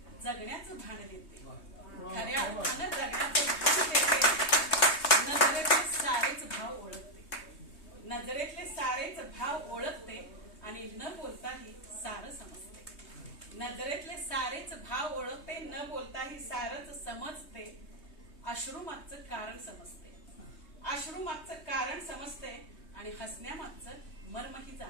जगण्याचं भान देते, खऱ्या अर्थानं जगण्याचं भान देते. नजरेतले सारेच भाव ओळखते, नजरेतले सारेच भाव ओळखते आणि न बोलताही सारं समजते, नजरेतले सारेच भाव ओळखते, न बोलताही सारच समजते. अश्रूमागचं कारण समजते, अश्रूमागचं कारण समजते आणि हसण्यामागचं मर्मही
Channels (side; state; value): right; late; 3.2 ms